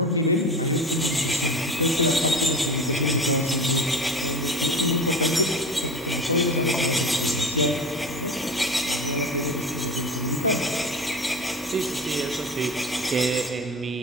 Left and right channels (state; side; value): normal; both; correlation 0.32